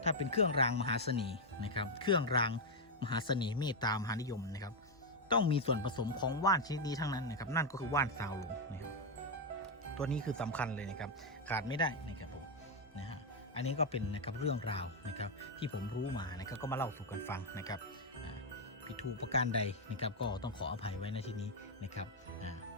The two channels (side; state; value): both; normal; correlation 0.02